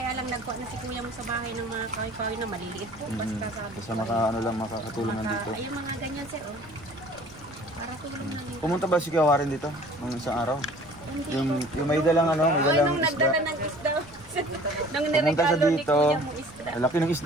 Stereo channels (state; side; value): noise; right; rumble, 22 dB below the sound